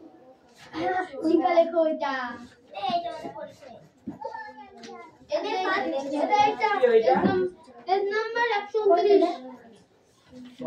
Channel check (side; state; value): both; identical; correlation 1.00